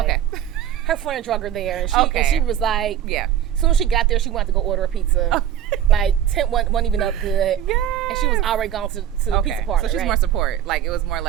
Her friend drug her there, and she was like, as soon as she got there, she wanted to go order a pizza. Like, tent wasn't even up good. And she was already gone to the pizza parlor. So she's more support. Like, it was more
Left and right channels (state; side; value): quieter; left; 10.5 dB